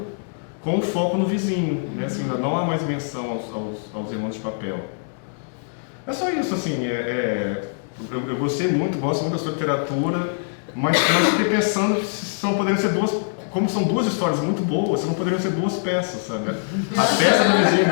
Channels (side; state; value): right; silent; digital silence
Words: com foco no vizinho, né? Assim, não há mais menção aos Irmãos de Papel. É só isso, assim, eu gosto muito da sua literatura, mas fiquei pensando se não poderiam ser como são duas histórias muito boas, se não poderiam ser duas peças, sabe? A peça do Vizinho